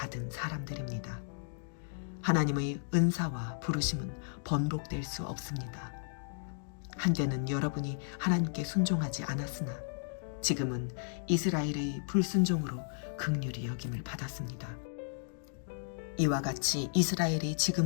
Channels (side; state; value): right; silent; digital silence